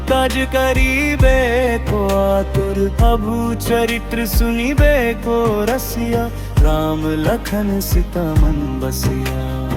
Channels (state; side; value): identical; both; correlation 1.00